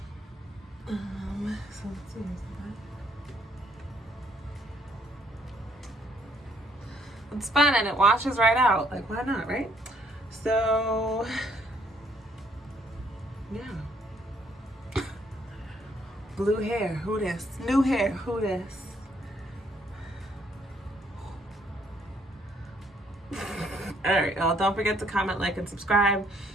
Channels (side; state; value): both; normal; correlation 0.67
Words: So let's see, It's fun and it washes right out. Like, why not, right? So, yeah. Blue hair, who this? New hair, who this? All right, y'all, don't forget to comment, like, and subscribe.